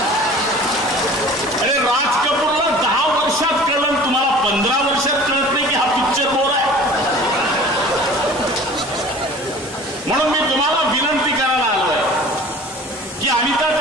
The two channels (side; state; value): both; normal; correlation 0.44